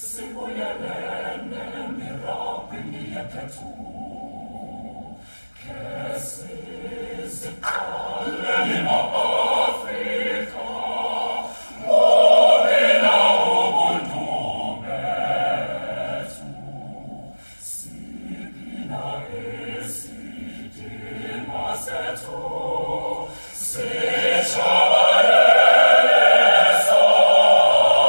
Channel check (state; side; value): inverted; both; correlation -1.00